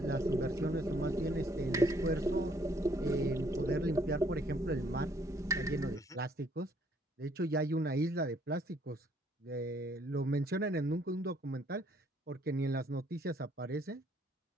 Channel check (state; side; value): normal; both; correlation 0.65